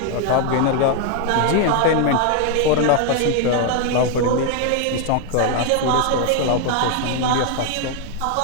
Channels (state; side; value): different; both; correlation 0.01